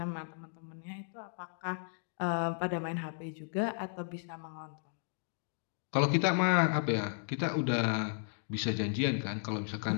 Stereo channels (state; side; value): silent; right; digital silence